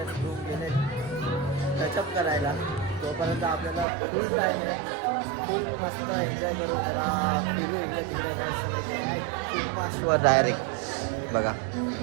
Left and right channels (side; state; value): left; drops out; at 3.9 s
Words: ग्रूम गेले टचअप करायला. तोपर्यंत आपल्याला फुल टाइम आहे. फुल मस्त एन्जॉय करू. जरा फिरू इकडे तिकडे मस्त माशवर डायरेक्ट. बघा